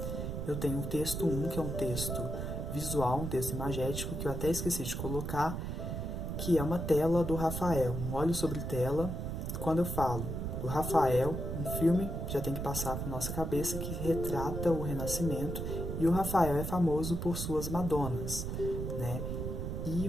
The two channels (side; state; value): right; noise; rumble, 3 dB below the sound